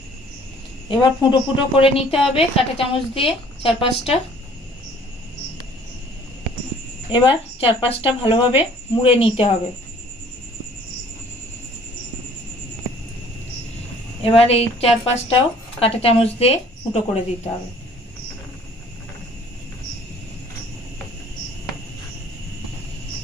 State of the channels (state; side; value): normal; both; correlation 0.55